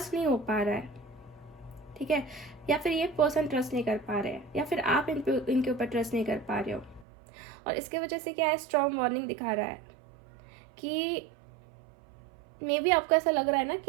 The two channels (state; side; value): drops out; left; at 7.1 s